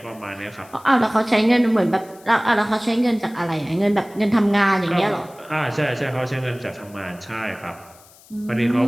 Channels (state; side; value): noise; left; hiss, 25 dB below the sound